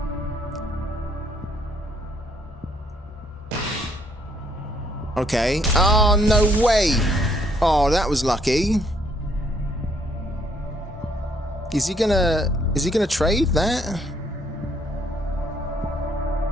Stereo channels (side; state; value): both; normal; correlation 0.68